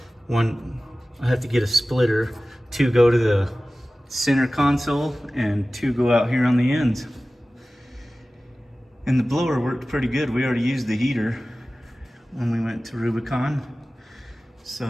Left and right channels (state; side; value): normal; both; correlation 0.97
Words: one, I have to get a splitter. 2 go to the center console and 2 go out here on the ends. And the blower worked pretty good. We already used the heater when we went to Rubicon.